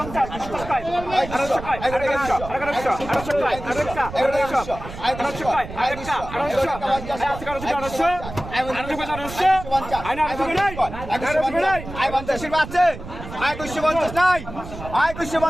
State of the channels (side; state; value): right; noise; rumble, 11 dB below the sound